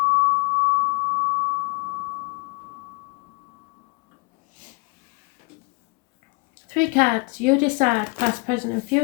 Three cards. You decide past, present and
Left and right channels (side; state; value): right; quieter; 30.3 dB